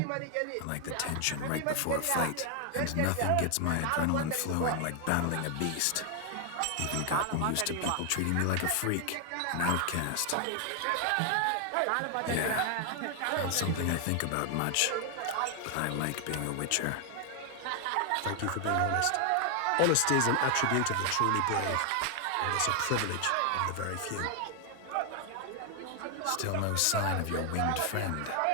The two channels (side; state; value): both; different; correlation 0.00